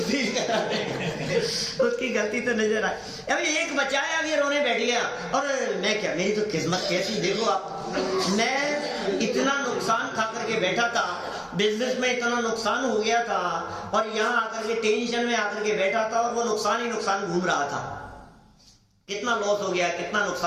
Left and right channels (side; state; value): both; identical; correlation 1.00